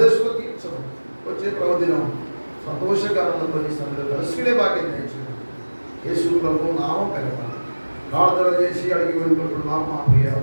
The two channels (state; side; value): inverted; both; correlation -1.00